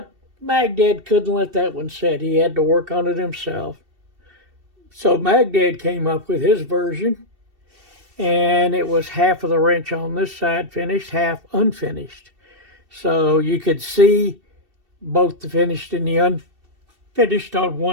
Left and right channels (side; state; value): left; late; 2.7 ms